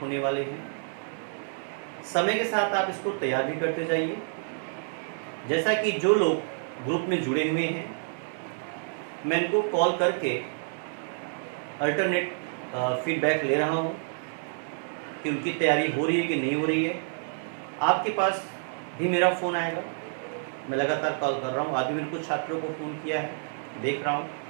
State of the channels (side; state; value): left; silent; digital silence